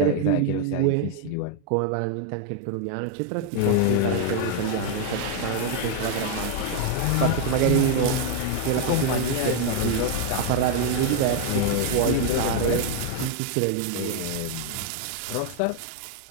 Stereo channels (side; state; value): both; different; correlation 0.00